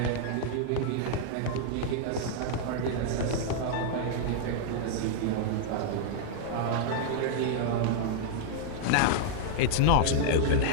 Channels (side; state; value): both; different; correlation -0.01